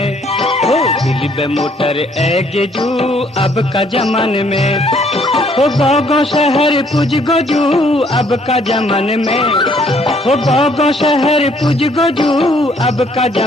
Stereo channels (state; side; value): normal; both; correlation 0.64